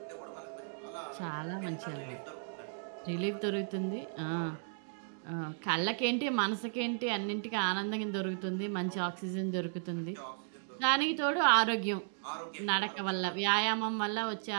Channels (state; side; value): silent; left; digital silence